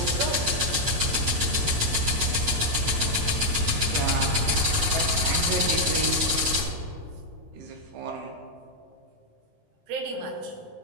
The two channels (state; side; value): late; left; 14 ms